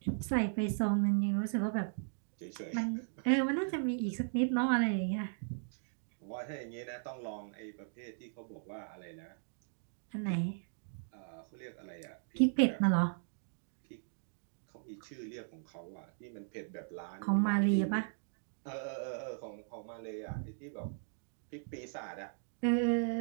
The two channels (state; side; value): silent; left; digital silence